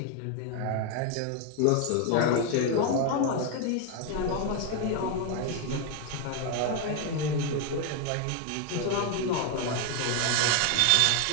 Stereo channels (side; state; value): both; different; correlation 0.01